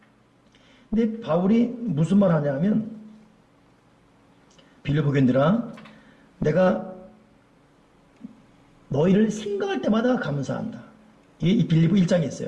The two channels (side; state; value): both; identical; correlation 1.00